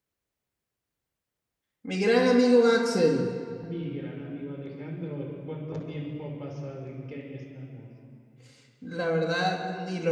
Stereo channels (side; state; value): both; identical; correlation 1.00